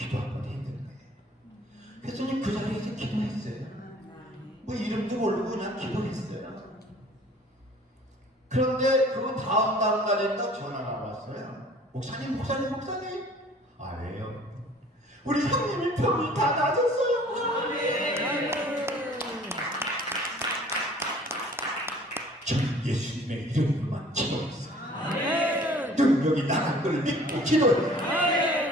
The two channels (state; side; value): normal; both; correlation 0.51